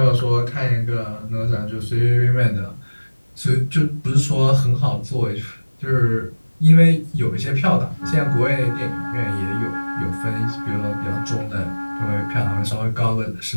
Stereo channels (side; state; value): both; inverted; correlation -1.00